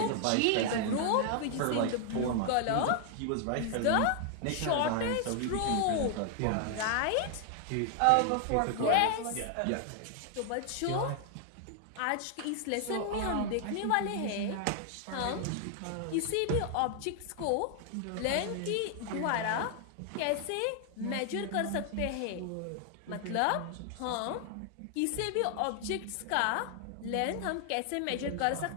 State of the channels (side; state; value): both; different; correlation 0.00